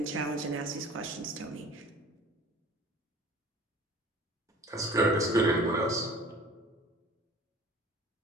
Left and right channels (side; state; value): both; normal; correlation 0.46